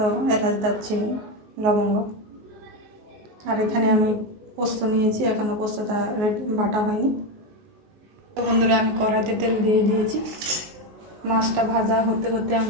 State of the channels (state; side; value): late; left; 19 ms